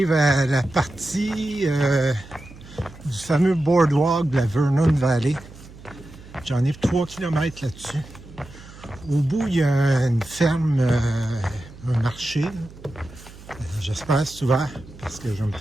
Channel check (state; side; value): noise; right; hum, 19 dB below the sound